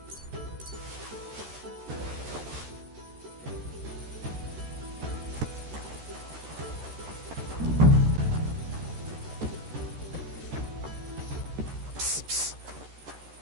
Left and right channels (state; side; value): late; left; 13 ms